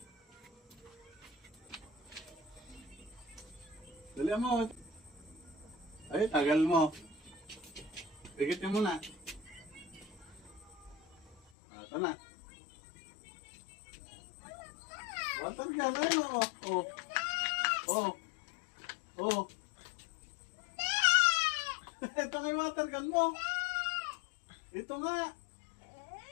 Dali mo. Ay, tagal mo. Pigitin mo na. Ito na. Water gun, ayun o. Oh. Oh. Oh. Ito nga yung water gun mo. Ito nga.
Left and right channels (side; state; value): right; drops out; at 11.4 s